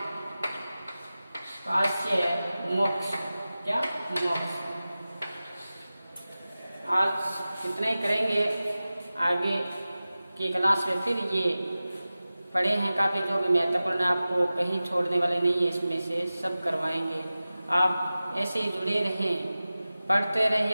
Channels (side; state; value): both; inverted; correlation -0.96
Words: काश्य मोक्ष, क्या मोक्ष। आज इतना ही करेंगे, आगे की क्लास में फिर ये पढ़े हैं काफ़ी जो भी महत्वपूर्ण, आपको कहीं छोड़ने वाले नहीं है, इसमें से सब करवाएंगे। आप ऐसे ही जुड़े रहें, पढ़ते